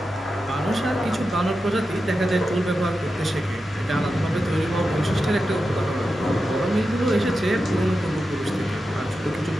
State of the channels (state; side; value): normal; both; correlation 0.90